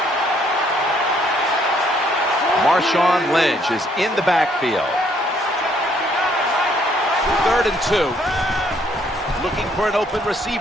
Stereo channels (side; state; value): both; normal; correlation 0.66